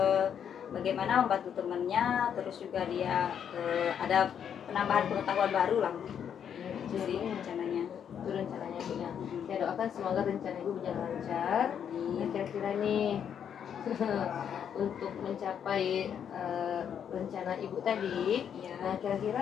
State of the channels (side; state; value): right; quieter; 8.4 dB